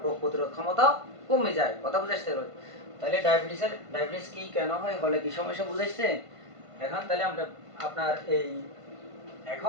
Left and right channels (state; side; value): late; left; 1.5 ms